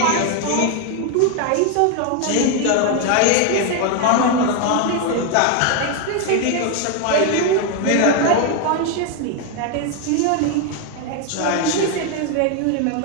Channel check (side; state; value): both; different; correlation 0.01